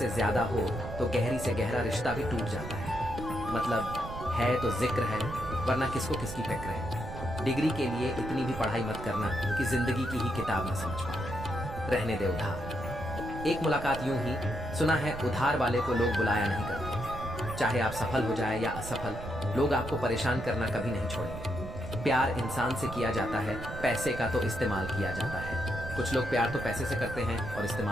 ज्यादा हो तो गहरी से गहरा रिश्ता भी टूट जाता है। मतलब है तो जिक्र है, वरना किसको किसकी फिक्र है। डिग्री के लिए इतनी भी पढ़ाई मत करना कि जिंदगी की ही किताब न समझ पाओ। रहने दे उधार। एक मुलाकात यूं ही, सुना है उधार वाले को लोग बुलाया नहीं करते। चाहे आप सफल हो जाए या असफल, लोग आपको परेशान करना कभी नहीं छोड़ेंगे। प्यार इंसान से किया जाता है, पैसे का तो इस्तेमाल किया जाता है। कुछ लोग प्यार तो पैसे से करते हैं और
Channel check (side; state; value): right; noise; rumble, 9 dB below the sound